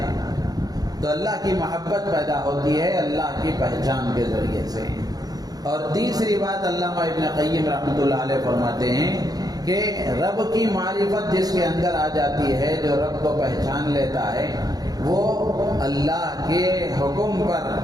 تو اللہ کی محبت پیدا ہوتی ہے اللہ کی پہچان کے ذریعے سے۔ اور تیسری بات علامہ ابن قیم رحمۃ اللہ علیہ فرماتے ہیں کہ رب کی معرفت جس کے اندر آ جاتی ہے، جو رب کو پہچان لیتا ہے، وہ اللہ کے حکم پر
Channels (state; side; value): late; left; 0.19 ms